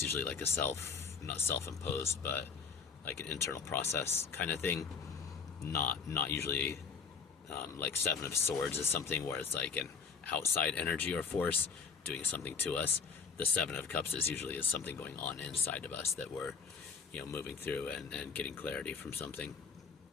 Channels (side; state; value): right; quieter; 5.7 dB